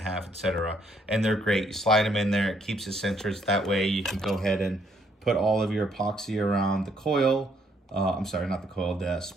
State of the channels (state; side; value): normal; both; correlation 0.69